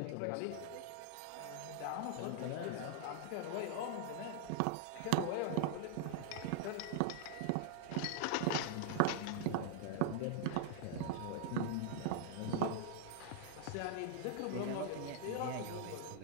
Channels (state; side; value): different; both; correlation -0.01